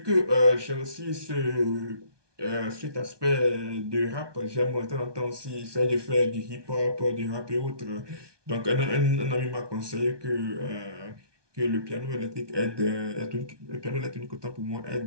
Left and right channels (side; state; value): left; late; 1.2 ms